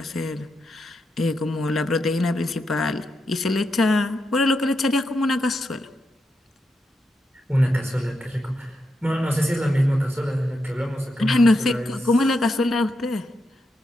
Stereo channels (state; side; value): normal; both; correlation 0.84